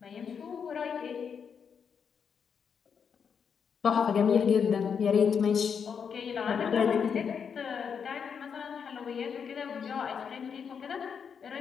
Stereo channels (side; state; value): right; quieter; 6.8 dB